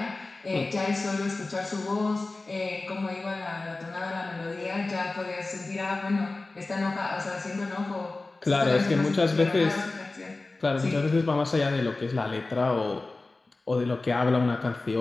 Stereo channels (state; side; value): quieter; right; 3.3 dB